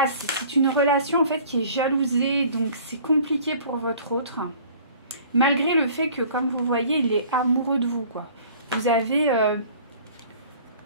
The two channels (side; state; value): both; inverted; correlation -0.50